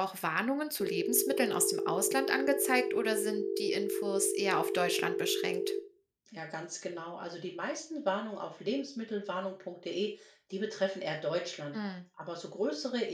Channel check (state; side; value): identical; both; correlation 1.00